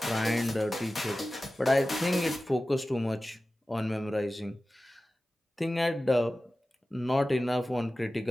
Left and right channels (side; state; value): both; normal; correlation 0.96